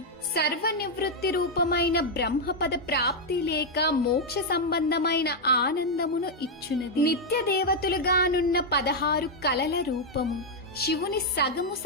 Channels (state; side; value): normal; both; correlation -0.01